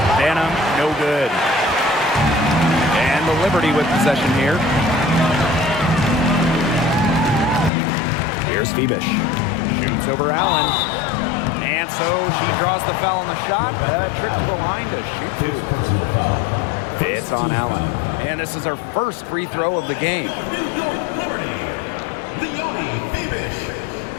Banham, no good. And the Liberty with possession here. Here's Phoebish. Shoots over Allen. And so she draws the foul on the shot. Trip to the line to shoot 2. Personal foul. It's on Allen. And this is her first free throw of the game. New York Liberty. Leonie Phoebish.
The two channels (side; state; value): right; drops out; at 7.7 s